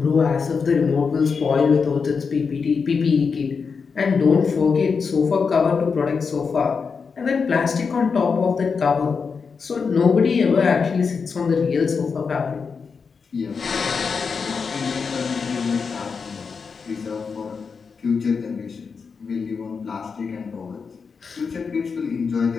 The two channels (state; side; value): quieter; right; 5.4 dB